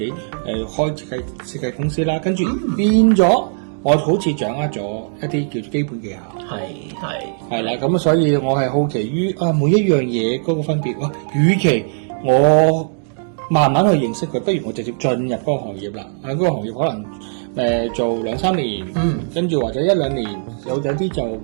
開設計公司啦。跟住變咗，我好似掌握咗一啲叫做基本技巧。係啦，咁所以我係好奇於每一樣嘢嗰個分別。與其我慢慢去認識佢，不如我直接進入嗰個行業啦。喺嗰個行業可能做2-3年，跟住或者1-2年，有啲就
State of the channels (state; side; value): silent; left; digital silence